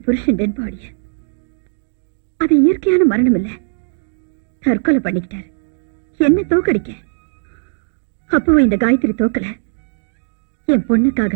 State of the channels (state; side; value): silent; left; digital silence